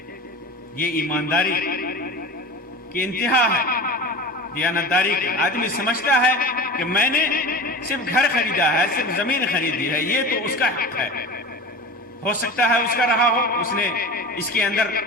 یہ ایمانداری کی انتہا ہے، دیانتداری کی. آدمی سمجھتا ہے کہ میں نے صرف گھر خریدا ہے، صرف زمین خریدی ہے، یہ تو اس کا حق ہے. ہو سکتا ہے اس کا رہا ہو، اس نے اس کے اندر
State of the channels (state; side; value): normal; both; correlation 0.32